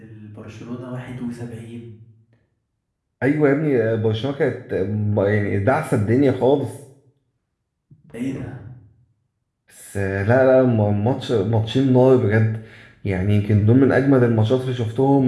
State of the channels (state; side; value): identical; both; correlation 1.00